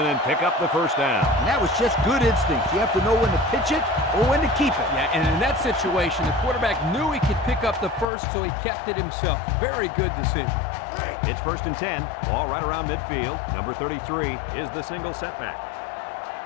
pick up the first down. And that was just good instincts. You have to know when to pitch it or when to keep it. Yeah, and in that situation, the quarterback knew he could pick up the first, so he kept it himself. Very good decision. It's 1st and 10. Ball right around midfield. Number 33 is the single setback.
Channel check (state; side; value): drops out; right; at 8.1 s